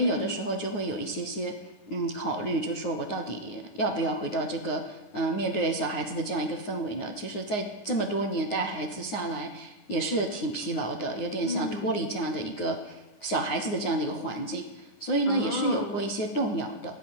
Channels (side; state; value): right; late; 9.6 ms